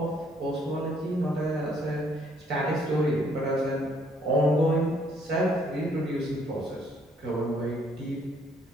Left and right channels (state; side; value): normal; both; correlation 0.66